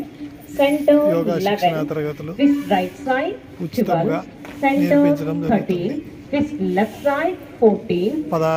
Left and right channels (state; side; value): identical; both; correlation 1.00